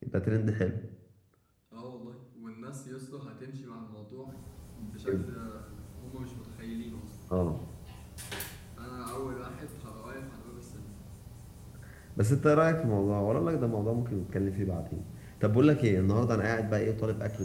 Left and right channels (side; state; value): both; identical; correlation 1.00